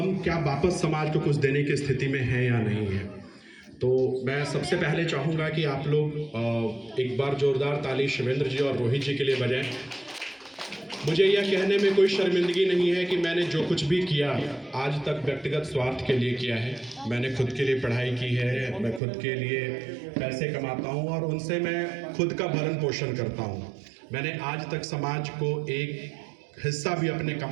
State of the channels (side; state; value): left; drops out; at 19.0 s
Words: क्या वापस समाज को कुछ देने की स्थिति में हैं या नहीं है। तो मैं सबसे पहले चाहूँगा कि आप लोग एक बार जोरदार ताली शिवेंद्र जी और रोहित जी के लिए बजाएं। मुझे यह कहने में कोई शर्मिंदगी नहीं है कि मैंने जो कुछ भी किया आज तक व्यक्तिगत स्वार्थ के लिए किया है। मैंने खुद के लिए पढ़ाई की है, मैं खुद के लिए पैसे कमाता हूँ और उनसे मैं खुद का भरण पोषण करता हूँ। मैंने आज तक समाज को एक हिस्सा भी अपने